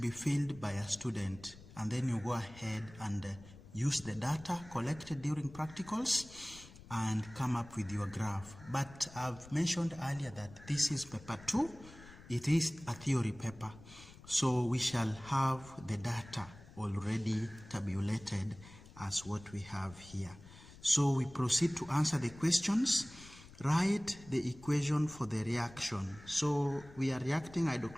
filled by a student, and then you go ahead and use the data collected during practicals and come up with your graph. But I've mentioned earlier that this is paper 2. It is a theory paper, so we shall have the data already tabulated as what we have here. So we proceed to answer the questions. Write the equation for the reaction. So we are reacting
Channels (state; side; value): noise; left; rumble, 19 dB below the sound